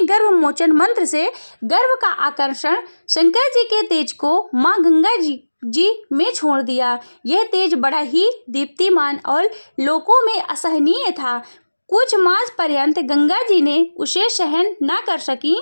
गर्भ मोचन मंत्र से गर्भ का आकर्षण शंकर जी के तेज को माँ गंगा जी में छोड़ दिया। यह तेज बड़ा ही दीप्तिमान और लोकों में असहनीय था। कुछ मास पर्यंत गंगा जी ने उसे सहन न कर सकी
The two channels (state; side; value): inverted; both; correlation -1.00